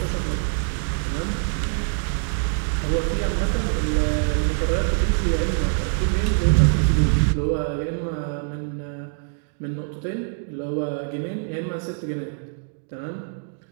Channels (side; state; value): left; silent; digital silence